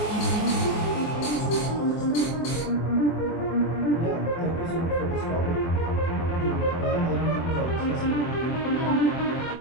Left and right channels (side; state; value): right; late; 24 ms